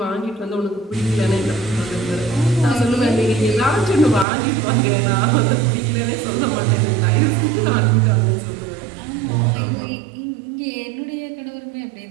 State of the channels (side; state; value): left; drops out; at 4.2 s